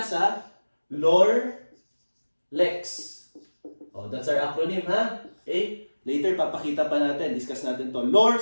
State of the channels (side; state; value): both; inverted; correlation -1.00